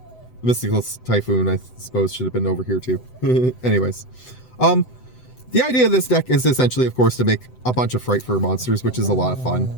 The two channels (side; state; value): right; late; 7.9 ms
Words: Mystical Typhoon, I suppose, should have been over here too. Anyways. The idea of this deck is essentially, of course, to make a bunch of Frighfurly monsters, which is a lot of